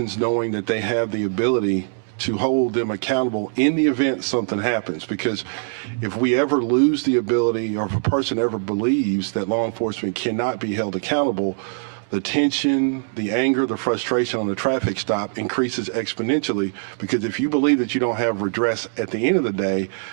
knowing that they have the ability to hold them accountable in the event something happens. Because if we ever lose the ability, or if a person ever believes that law enforcement cannot be held accountable, the tension, the anger, the frustration on a traffic stop increases exponentially. Because if you believe that you don't have redress at the end of the day,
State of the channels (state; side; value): silent; left; digital silence